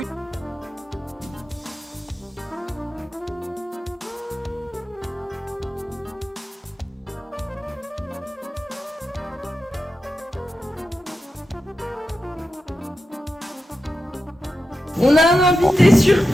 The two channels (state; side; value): normal; both; correlation 0.90